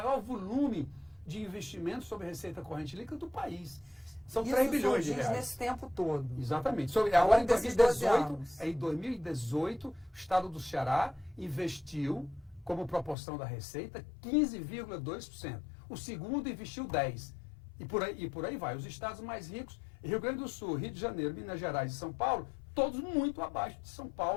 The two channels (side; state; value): right; drops out; at 13.2 s